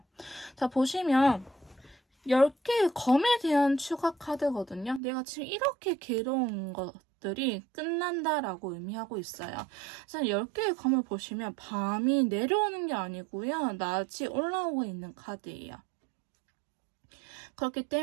자, 보시면 10개의 검에 대한 추가 카드거든요. 내가 지금 이렇게 괴로운 것들이 끝난다라고 의미하고 있어요. 그래서 10개의 검을 보시면 밤이 내려오는 게 아니고요, 낮이 올라오고 있는 카드예요. 그렇기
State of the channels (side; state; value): left; drops out; at 5.0 s